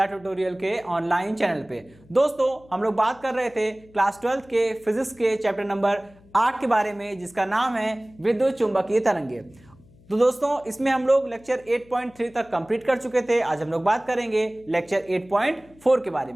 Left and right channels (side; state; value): left; noise; hum, 27 dB below the sound